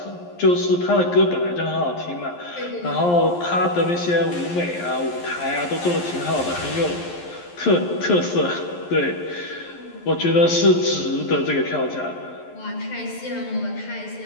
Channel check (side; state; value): right; late; 11 ms